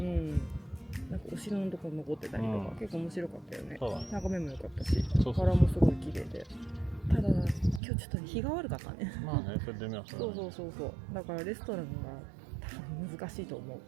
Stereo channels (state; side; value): drops out; left; at 7.8 s